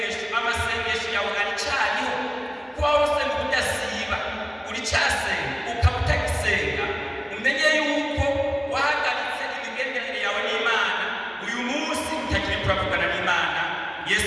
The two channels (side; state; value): both; identical; correlation 1.00